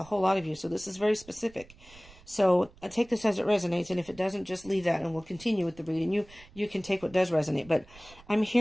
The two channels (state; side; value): noise; right; rumble, 23 dB below the sound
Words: whole lot of you, so this is very specific. So I take this as it resonates, and if it doesn't, just leave that and we'll continue with the reading. You can take what does resonate. But I'm